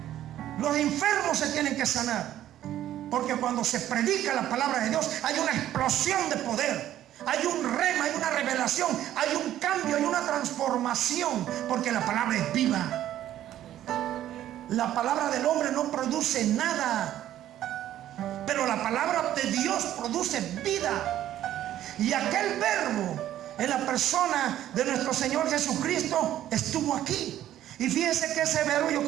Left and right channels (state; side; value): quieter; left; 12.4 dB